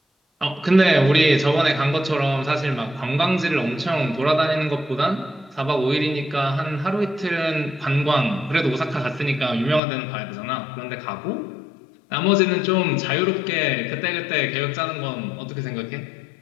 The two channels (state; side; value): drops out; right; at 9.8 s